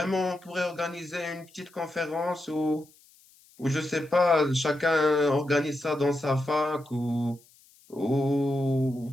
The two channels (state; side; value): noise; left; hiss, 28 dB below the sound